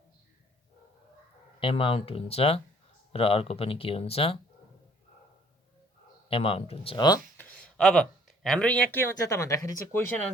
एमाउन्ट हुन्छ र अर्को पनि के हुन्छ? एमाउन्ट हुन्छ हो। अब हाम्रो यहाँ के हुन्छ त भन्दाखेरि चाहिँ क्वेसन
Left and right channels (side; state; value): both; normal; correlation 0.59